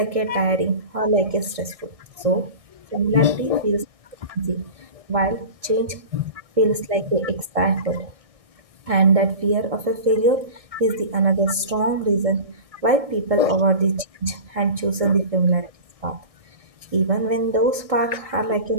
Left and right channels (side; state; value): left; late; 1.6 ms